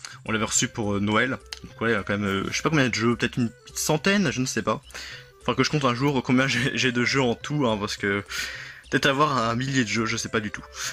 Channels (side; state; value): both; identical; correlation 1.00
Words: on l'avait reçu pour Noël, donc ouais, quand même, je sais pas combien de jeux, peut-être une petite centaine, je ne sais pas. Enfin que je compte un jour combien j'ai de jeux en tout, hein, parce que peut-être avoir un millier de jeux, je sais pas du tout.